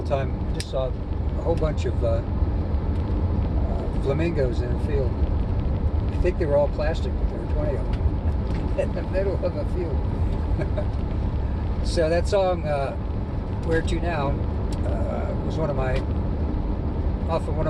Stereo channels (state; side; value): identical; both; correlation 1.00